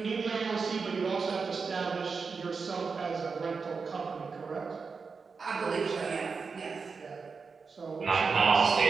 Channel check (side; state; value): left; quieter; 5.0 dB